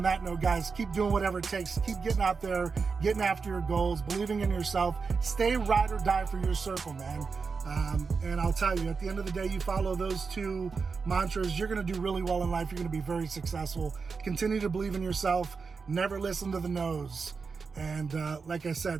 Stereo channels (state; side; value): quieter; left; 5.0 dB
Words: that note, guys, keep doing whatever it takes. Keep getting out there, getting after your goals, believing in yourself. Stay ride or die for your circle, man. And I'll tell you, at the end of the day, you follow those two mantras, you're going to do really well in life. You're going to be very successful. Continue to believe in yourself. Never listen to the no's. And like I said,